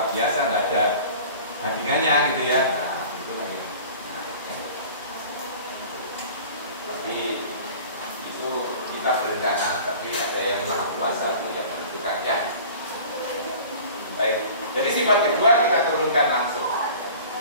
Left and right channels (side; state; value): both; inverted; correlation -0.43